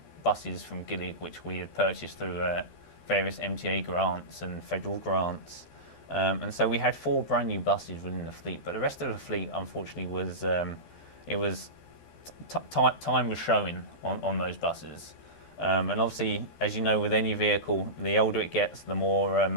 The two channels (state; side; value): late; right; 13 ms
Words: buses from Gillig, which we had purchased through various MTA grants and federal grants, and so we had 4 brand new buses within the fleet. But the rest of the fleet, unfortunately, was time was showing on those buses. And obviously, as you know, with any vehicle, the older it gets, the more